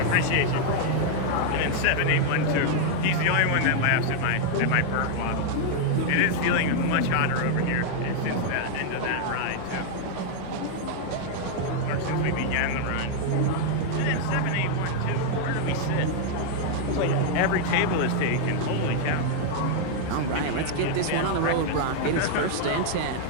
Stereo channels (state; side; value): different; both; correlation 0.00